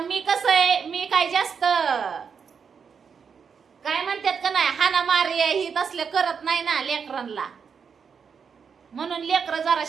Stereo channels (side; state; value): left; quieter; 6.3 dB